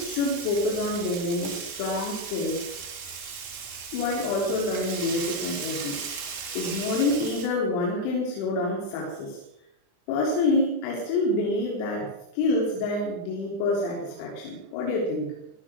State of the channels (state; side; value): late; right; 35 ms